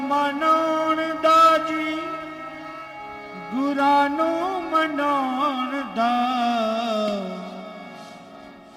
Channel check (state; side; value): identical; both; correlation 1.00